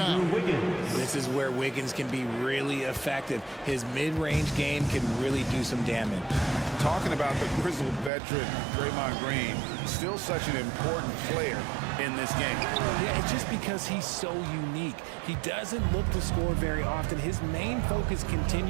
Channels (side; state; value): left; drops out; at 8.1 s